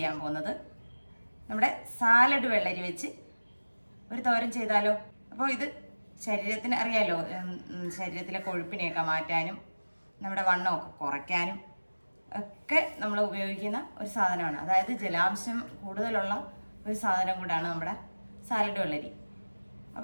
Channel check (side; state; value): both; inverted; correlation -1.00